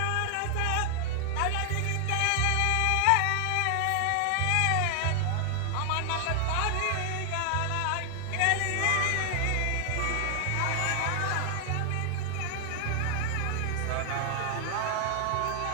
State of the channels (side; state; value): both; different; correlation 0.00